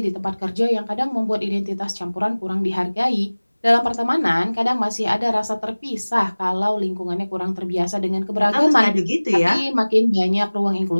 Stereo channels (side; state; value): both; inverted; correlation -1.00